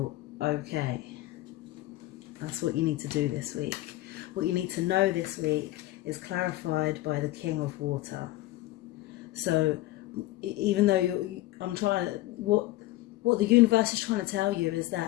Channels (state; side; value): quieter; right; 17.0 dB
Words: okay. That's what you need to do this week. What you need to know this week is clarified by the King of Water. So even though what the universe is trying to tell you is